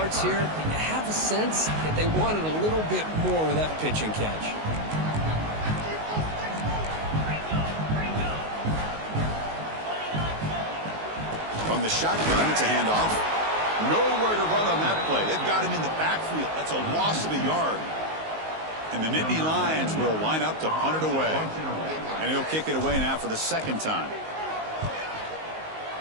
here, but you have a sense that they wanted a little bit more of that pitch and catch. From the shotgun, it's a handoff. Nowhere to run on that play. They've got him in the backfield. That's a loss of a yard. And the Nittany Lions will line up to punt it away. And he'll kick it away now for the second time.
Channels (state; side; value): late; left; 19 ms